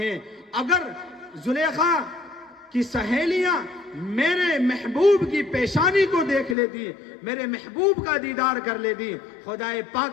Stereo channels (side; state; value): right; drops out; at 6.6 s